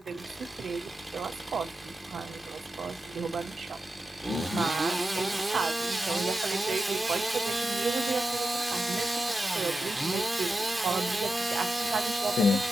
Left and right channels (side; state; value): both; normal; correlation 0.90